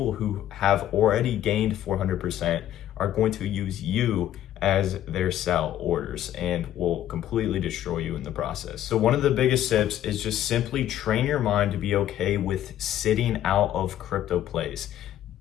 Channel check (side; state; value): right; quieter; 12.0 dB